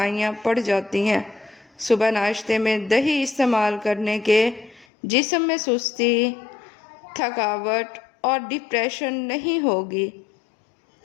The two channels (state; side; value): drops out; right; at 4.9 s